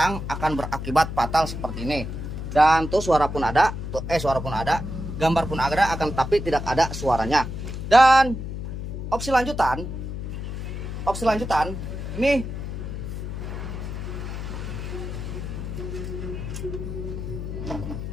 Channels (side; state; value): left; noise; hum, 6 dB below the sound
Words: akan berakibat fatal seperti ini. Dan tuh suara pun ada, gambar pun ada, akan tapi tidak ada suaranya. Dan opsi lanjutan nih,